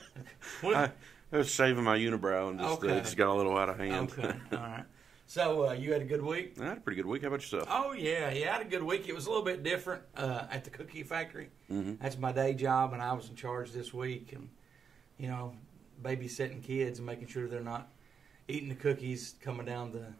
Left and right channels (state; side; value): quieter; left; 6.5 dB